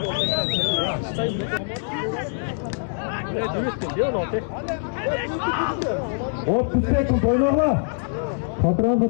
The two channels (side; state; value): right; silent; digital silence